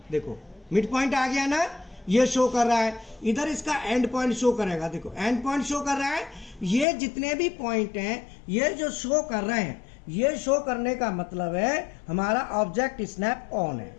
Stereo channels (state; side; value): drops out; right; at 6.9 s